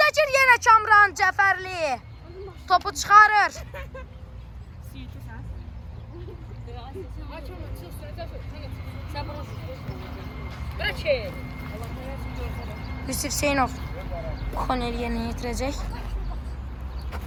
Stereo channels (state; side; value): identical; both; correlation 1.00